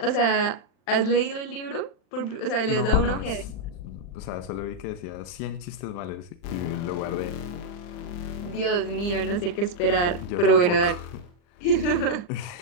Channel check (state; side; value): late; right; 40 ms